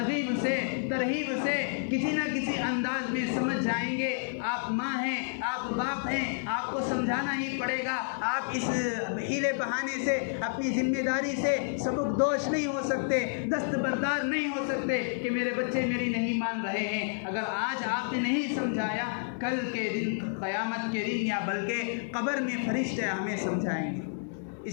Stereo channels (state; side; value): silent; right; 58 dB below the other